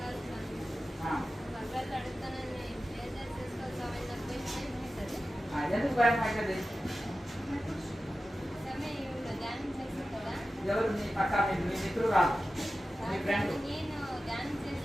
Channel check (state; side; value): normal; both; correlation 0.94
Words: ఎందుకు భయం అవుతుంది ఎవరు మీ పక్క మీ మిత్రుడు రాదు మీ friend